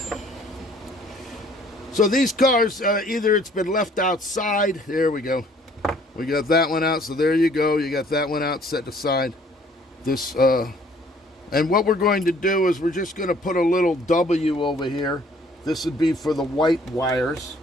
So these cars, either it's been left outside. There we go. We got that one out. So there you go. You got that one out set aside. This and what we're going to do is we're just going to put a little W over here. This would be for the white wires.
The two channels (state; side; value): normal; both; correlation 0.58